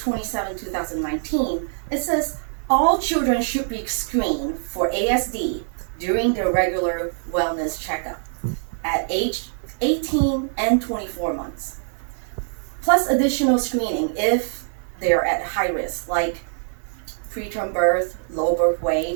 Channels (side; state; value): left; silent; 63 dB below the other